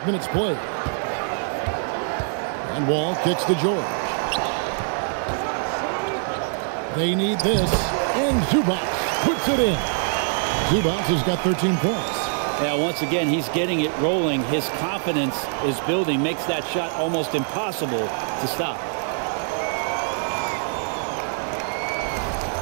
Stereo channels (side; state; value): left; silent; 63 dB below the other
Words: minutes played. And Wall kicks to George. They need this, and Zubac puts it in. Zubac has got 13 points. Yeah, once again, he's getting it rolling. His confidence is building, makes that shot almost impossible to stop.